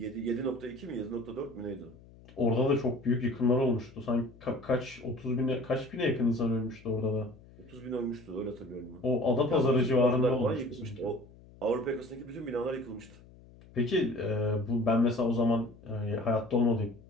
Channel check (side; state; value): left; noise; hum, 23 dB below the sound